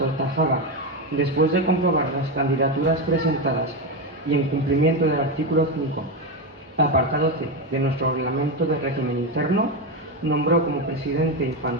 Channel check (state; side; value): normal; both; correlation 0.12